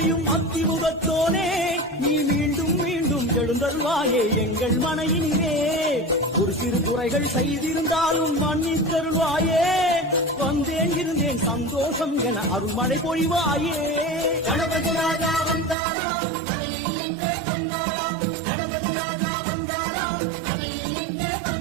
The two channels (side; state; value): left; drops out; at 15.8 s